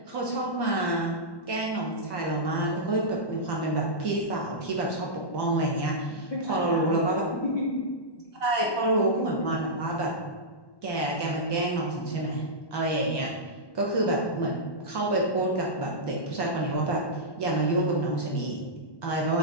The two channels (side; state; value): right; late; 1.1 ms